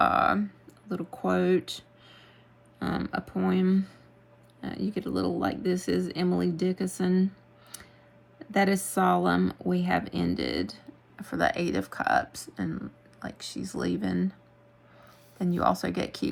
quote, a poem. You get a little like, this is Emily Dickinson. That is solemn, we have ended, for the Eight of Cups, and like she's leaving. Then you also get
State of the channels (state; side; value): identical; both; correlation 1.00